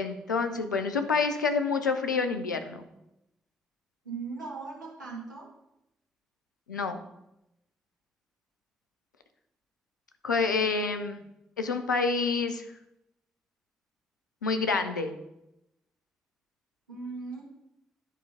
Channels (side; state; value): right; quieter; 3.8 dB